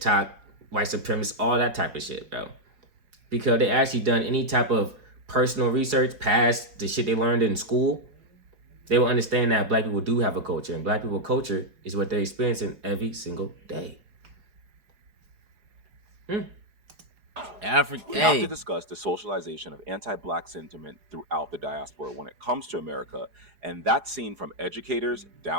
white supremacists, all that type of shit, bro. Because they actually done any type of personal research past the shit they learned in school, they will understand that Black people do have a culture, and Black people culture is what they're experiencing every single day. We have to discuss the socialization of anti-Black sentiment throughout the diaspora when it comes to America, and that's seen from educators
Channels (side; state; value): left; late; 4.8 ms